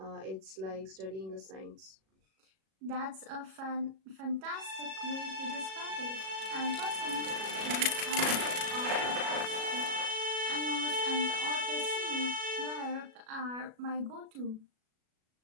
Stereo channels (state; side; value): late; left; 37 ms